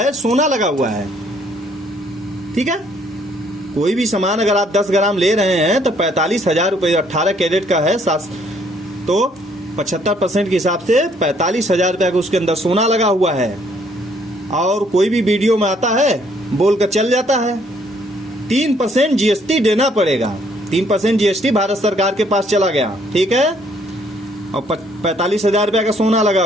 सोना लगा हुआ है, ठीक है। कोई भी सामान अगर आप 10 ग्राम ले रहे हैं तो 45,000 रुपये 18 कैरेट का है, तो 75% के हिसाब से 45,000 रुपया का उसके अंदर सोना लगा हुआ है। और कोई भी वीडियो में आता है बोल कर चल जाता है 3% GST देना पड़ेगा। 3% GST भारत सरकार के पास चला गया, ठीक है, और 45,000 रुपया का सोना लगा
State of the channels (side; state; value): both; normal; correlation 0.65